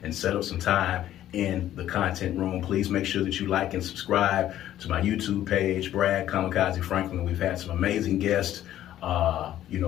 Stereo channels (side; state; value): right; quieter; 12.5 dB